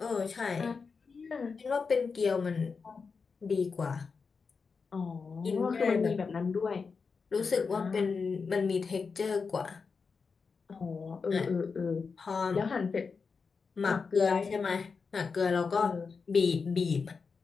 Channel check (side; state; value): right; quieter; 5.1 dB